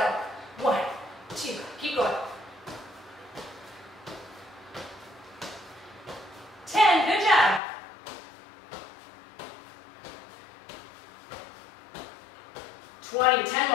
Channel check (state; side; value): drops out; right; at 7.6 s